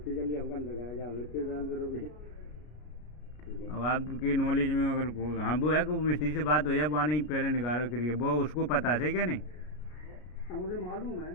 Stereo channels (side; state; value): right; late; 33 ms